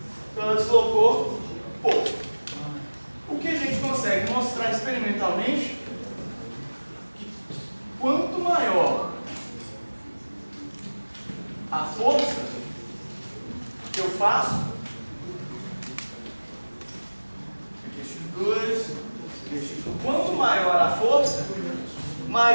Então ela deslocou pouco. O que a gente consegue mostrar experimentalmente que quanto maior a força que eu faço, aqui x2, aqui x1, quanto maior a força,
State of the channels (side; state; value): both; inverted; correlation -1.00